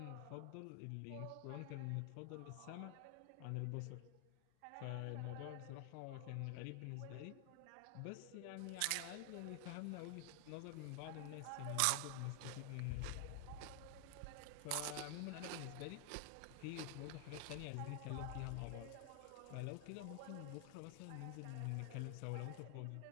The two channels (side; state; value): both; different; correlation 0.00